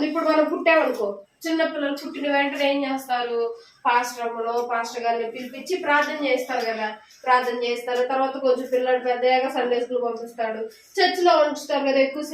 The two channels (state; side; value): identical; both; correlation 1.00